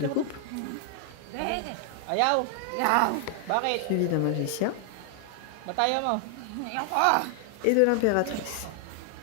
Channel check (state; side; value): different; both; correlation 0.00